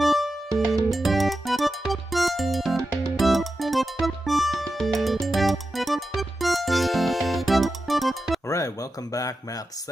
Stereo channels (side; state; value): both; normal; correlation 0.90